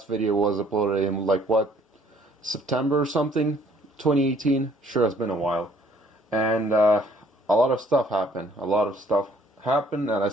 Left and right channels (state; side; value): normal; both; correlation 0.61